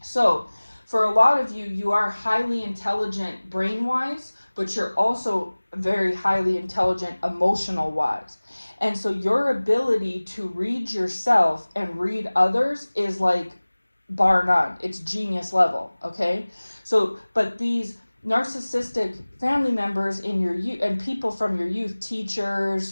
So for a lot of you, you are highly intelligent brain-wise, but you're also very highly intelligent emotional-wise. And so your ability to read yourself and read others is like bar none. It's genius level, okay? So, but these narcissistic family members in your youth and people from your youth, teachers,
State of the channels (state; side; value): inverted; both; correlation -1.00